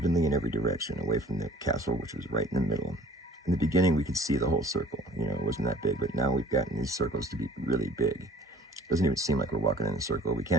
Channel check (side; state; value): both; normal; correlation 0.50